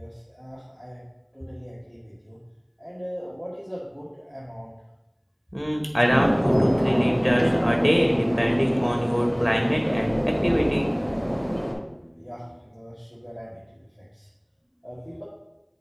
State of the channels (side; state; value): both; identical; correlation 1.00